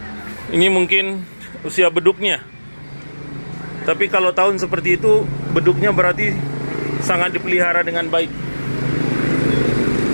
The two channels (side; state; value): both; inverted; correlation -1.00